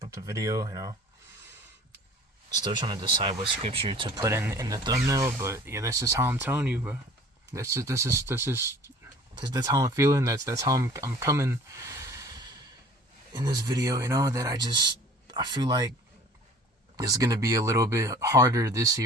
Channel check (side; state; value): both; normal; correlation 0.47